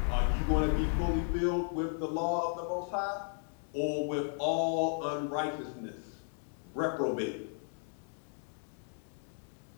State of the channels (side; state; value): right; silent; 55 dB below the other